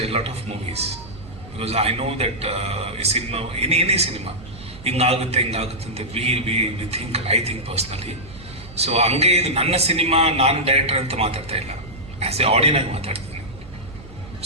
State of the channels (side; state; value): right; noise; hum, 18 dB below the sound